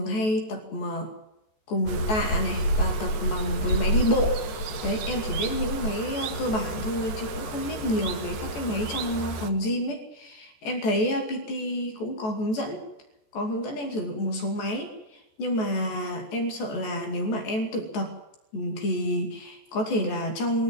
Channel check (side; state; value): right; late; 14 ms